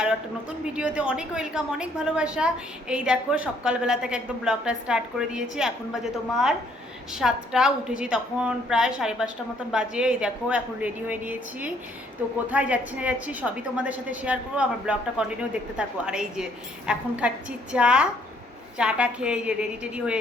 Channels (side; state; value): both; normal; correlation 0.66